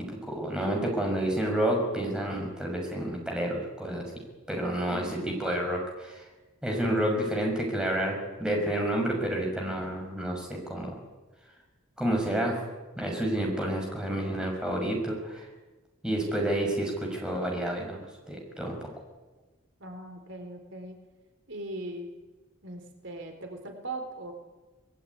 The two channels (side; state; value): both; normal; correlation 0.57